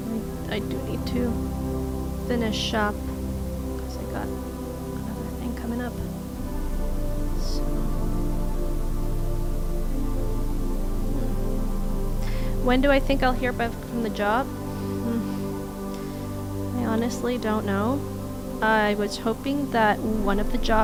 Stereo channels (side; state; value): both; identical; correlation 1.00